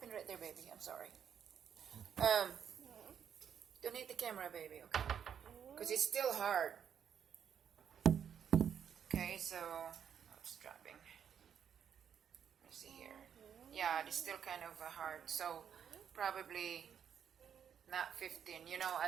right there, baby. I'm sorry. Don't hit the camera, baby, okay? Because it's still hard. Okay, so it's dropping. Let's see here. Yeah, it's still kind of hard. So probably not 15. You know,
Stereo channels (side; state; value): left; quieter; 8.3 dB